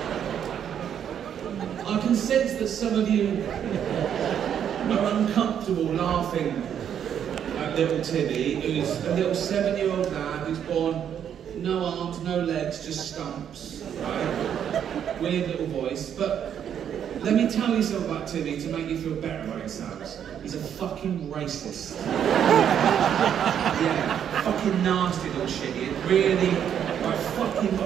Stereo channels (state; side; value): quieter; left; 9.0 dB